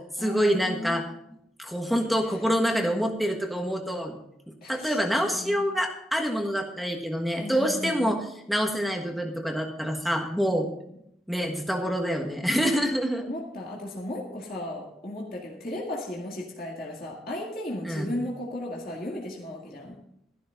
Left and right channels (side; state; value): both; normal; correlation 0.85